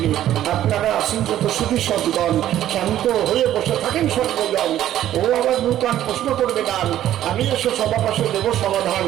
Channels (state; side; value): quieter; left; 12.3 dB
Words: আপনারা আসেন যত সুখী সদ্গণ, শান্ত হয়ে বসে থাকেন সর্বজন। ও আবার নূতন প্রশ্ন করবে গান, আমি এসে সবার পাশে দেব সমাধান।